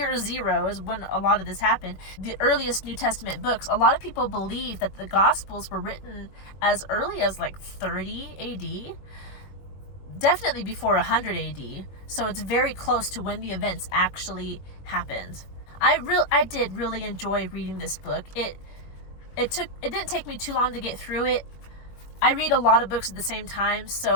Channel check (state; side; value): late; right; 21 ms